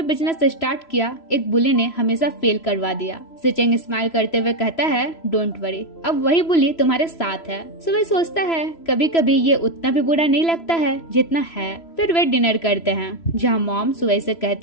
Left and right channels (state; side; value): late; right; 3.0 ms